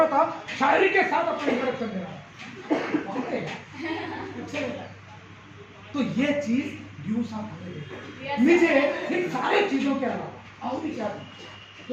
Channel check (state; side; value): identical; both; correlation 1.00